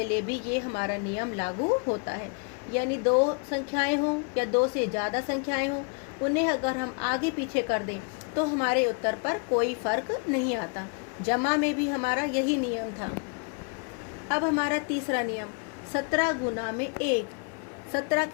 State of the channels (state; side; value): quieter; right; 35.5 dB